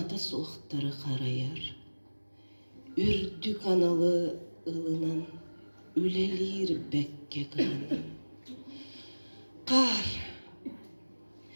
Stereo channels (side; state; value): both; inverted; correlation -1.00